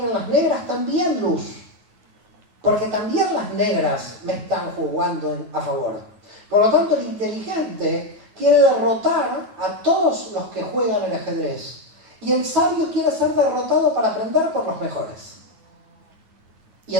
en las negras también luz. Porque también las negras me están jugando a favor. Por lo tanto, el inteligente quiere derrotar a todos los que juegan el ajedrez. Y el sabio quiere ser derrotado para aprender por los mejores. Y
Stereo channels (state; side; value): late; left; 9.2 ms